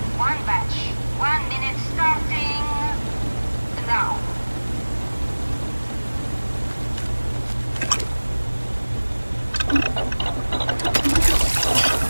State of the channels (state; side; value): inverted; both; correlation -1.00